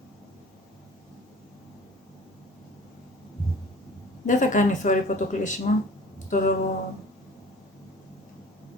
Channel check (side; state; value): both; normal; correlation 0.45